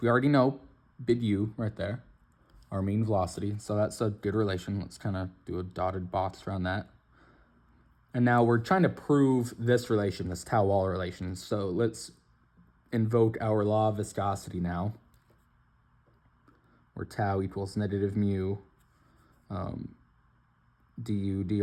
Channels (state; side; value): identical; both; correlation 1.00